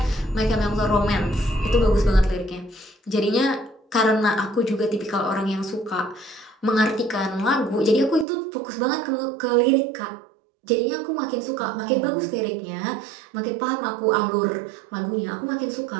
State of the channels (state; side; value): drops out; left; at 8.2 s